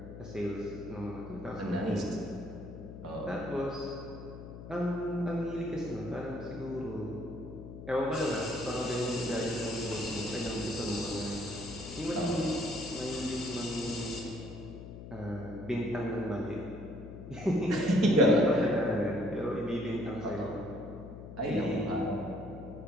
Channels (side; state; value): left; noise; hum, 12 dB below the sound